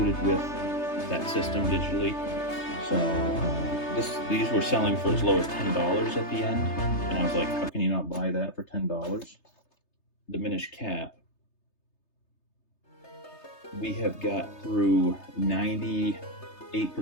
with that system digitally. So these were selling for as low as $10 at the end, and I was like, how can you not buy that for $10? Diminished Cap. We have got through 98%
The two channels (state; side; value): late; right; 3.3 ms